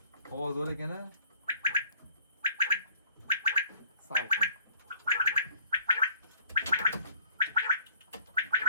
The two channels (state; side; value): inverted; both; correlation -0.56